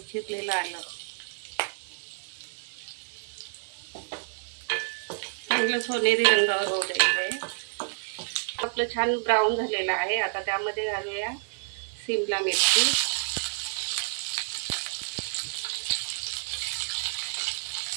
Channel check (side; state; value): left; silent; 59 dB below the other